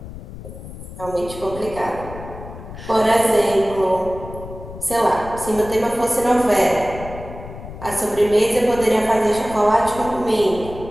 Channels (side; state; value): left; noise; rumble, 13 dB below the sound